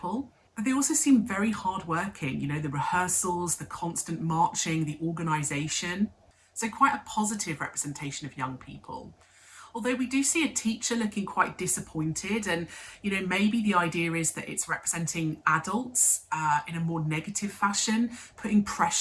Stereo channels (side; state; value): both; identical; correlation 1.00